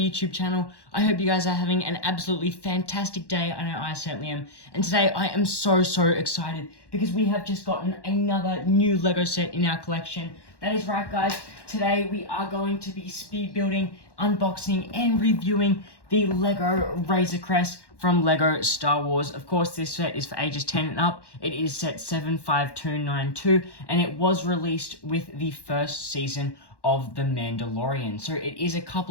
channel. I hope you guys are having an absolutely fantastic day. I know I certainly am. And today I am so excited because we have just gotten another new Lego set in our collection. That is right guys, today we are going to be speed building, unboxing and reviewing the Lego Razor Crest from Lego Star Wars. Of course, this set is for ages 10 and up. It is set 75292 and it was released with the first season of The Mandalorian. So it is a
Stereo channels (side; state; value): right; late; 1.1 ms